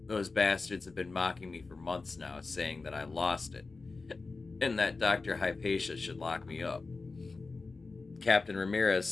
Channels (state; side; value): quieter; right; 3.9 dB